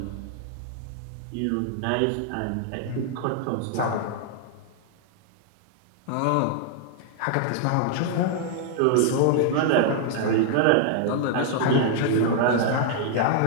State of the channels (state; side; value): different; both; correlation -0.01